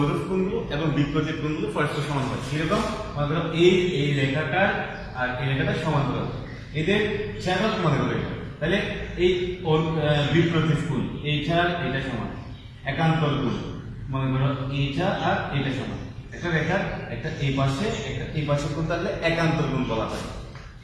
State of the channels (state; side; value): identical; both; correlation 1.00